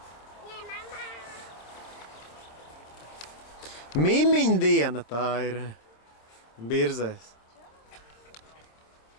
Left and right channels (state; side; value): late; right; 26 ms